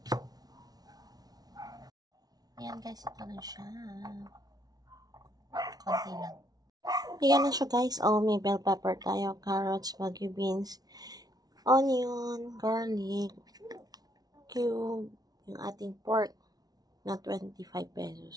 Ayan, guys, ito na siya. Konti lang. Ayan na siya, guys. Oh, may bell pepper tayo, carrots, bagyo beans, onion, garlic, cube, yung ating pork na 25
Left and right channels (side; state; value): left; late; 0.19 ms